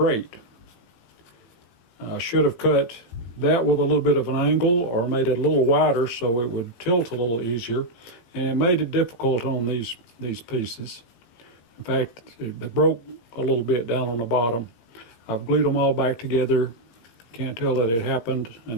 I should have cut that with a little bit of an angle, or made it a little wider so it would tilt a little easier, and it made it difficult on these pieces. In fact, they broke a little bit down on the bottom. I've glued them all back together. Can't tell that it happened,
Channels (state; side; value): late; right; 17 ms